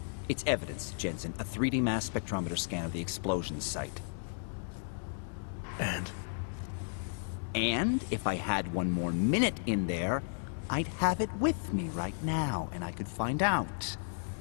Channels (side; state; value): right; silent; digital silence